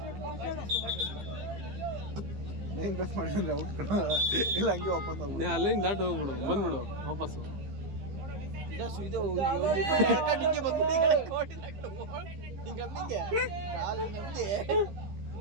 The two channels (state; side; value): late; left; 15 ms